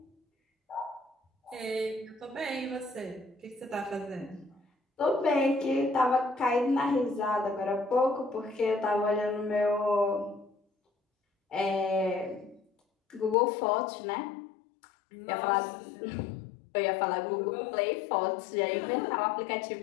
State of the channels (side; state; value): right; drops out; at 13.4 s